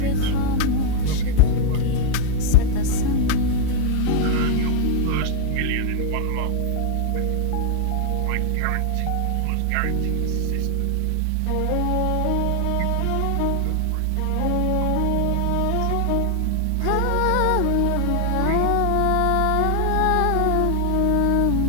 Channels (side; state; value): both; different; correlation 0.00